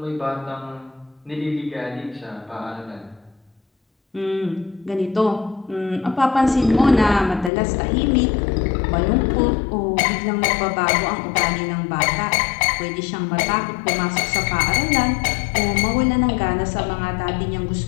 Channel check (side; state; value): right; drops out; at 7.5 s